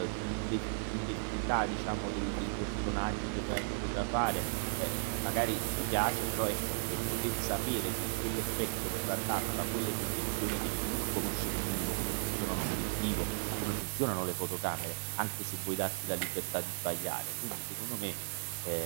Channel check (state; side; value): silent; left; digital silence